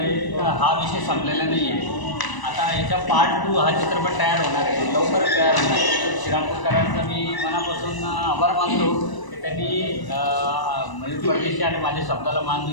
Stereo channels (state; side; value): late; right; 1.0 ms